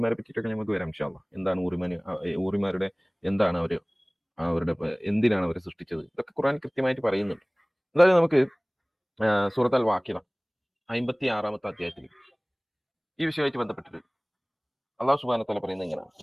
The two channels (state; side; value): identical; both; correlation 1.00